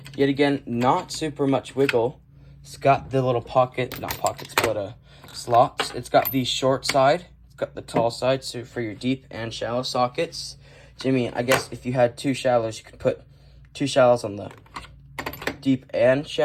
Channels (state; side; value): identical; both; correlation 1.00